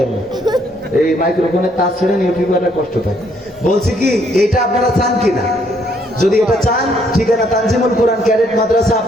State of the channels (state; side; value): normal; both; correlation 0.68